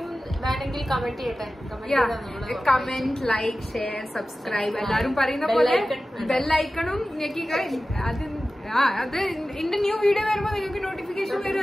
വേണമെങ്കിൽ കമന്റ് ചെയ്യട്ടെ. കമന്റ്, ലൈക്ക്, ഷെയർ, സബ്സ്ക്രൈബ് എല്ലാരും പറയുന്ന പോലെ ബെല്ലൈക്കണും ഞെക്കിക്ക. അത് എന്റെ ന്യൂ വീഡിയോ വരുമ്പോ നിങ്ങൾക്ക് നോട്ടിഫിക്കേഷൻ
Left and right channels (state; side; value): normal; both; correlation 0.95